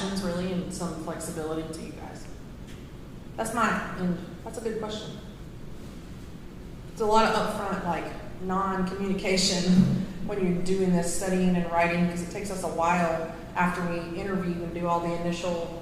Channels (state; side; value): identical; both; correlation 1.00